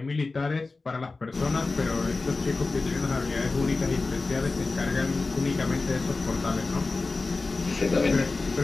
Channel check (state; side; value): quieter; right; 3.7 dB